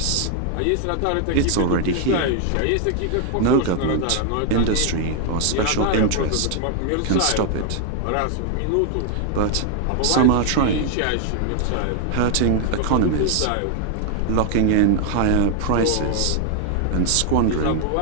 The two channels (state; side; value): different; both; correlation 0.00